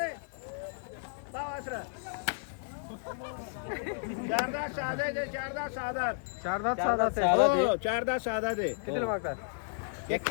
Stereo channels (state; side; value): silent; right; digital silence